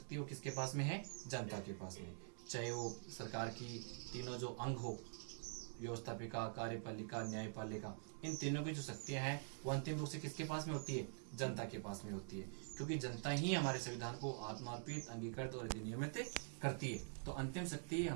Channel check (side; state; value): left; silent; digital silence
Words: वो किसके पास में है? जनता के पास में। चाहे वो सरकार की तीनों जो अंग हो, व्यवस्थापिका, कार्यपालिका, न्यायपालिका, इन तीनों की जो शक्तियां हैं वो अंतिम रूप से किसके पास में होती है? जनता के पास में होती है, क्योंकि जनता ही हमारे संविधान को आत्मार्पित, अंगीकृत और अधिनियमित करती है। तो अंतिम शक्ति